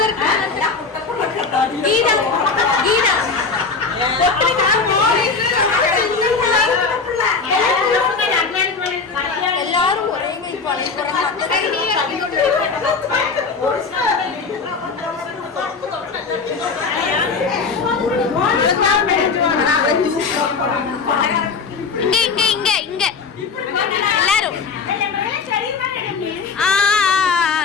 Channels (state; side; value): quieter; right; 4.8 dB